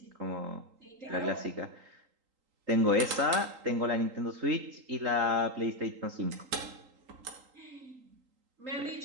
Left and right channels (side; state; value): left; late; 3.8 ms